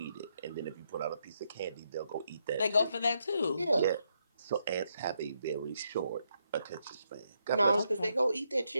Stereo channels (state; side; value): inverted; both; correlation -0.79